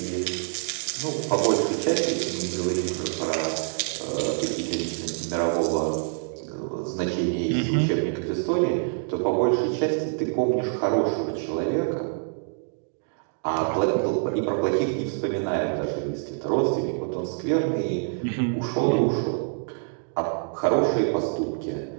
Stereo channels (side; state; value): left; silent; 61 dB below the other